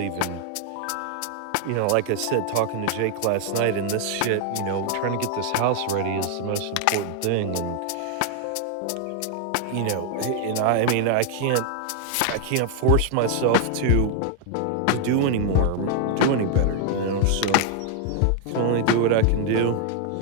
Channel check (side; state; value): both; different; correlation 0.00